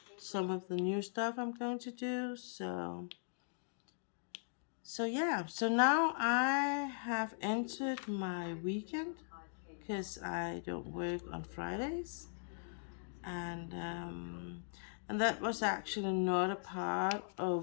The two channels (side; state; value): right; silent; digital silence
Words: some of the new stuff I'm going to do. So yeah, so now I have entered my weekend because I don't work on Fridays, and um, and that was actually not a part